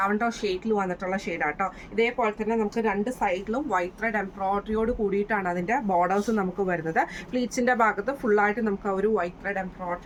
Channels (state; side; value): identical; both; correlation 1.00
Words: ഷെയ്ഡിൽ വന്നിട്ടുള്ള ഷെയ്ഡാട്ടോ. ഇതേപോലെ തന്നെ നമുക്ക് രണ്ട് സൈഡിലും വൈറ്റ് ത്രെഡ് എംബ്രോയിഡറിയോട് കൂടിയിട്ടാണ് അതിൻ്റെ ബോർഡേഴ്സ് നമുക്ക് വരുന്നത്. പ്ലീറ്റ്സിൻ്റെ ഭാഗത്ത് ഫുള്ളായിട്ട് നമുക്ക് ആ ഒരു വൈറ്റ് ത്രെഡ്